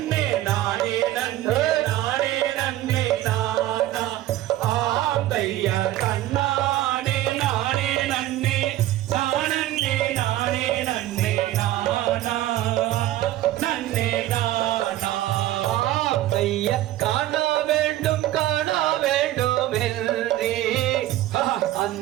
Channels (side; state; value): left; quieter; 14.5 dB